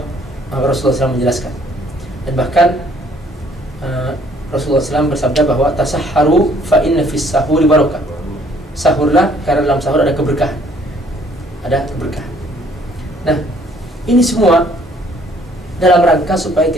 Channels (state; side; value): normal; both; correlation 0.61